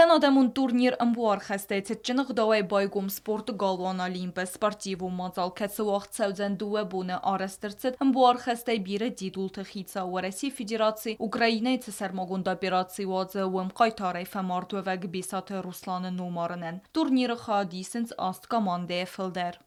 adamın turnir ymwar chestece czynach dołej bojgum sportu galwan Olimpe sportivu mazal ketsuach całdzen duwe bune arestyrcet ymwar chestej bire didul techitsa u Resi Federacji Ukrainy cesar mogun dobiracji ładze łym kajtarej femartuwek bisate Ruslan numarnen. Turnir chadisens ast komande filder.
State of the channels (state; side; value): identical; both; correlation 1.00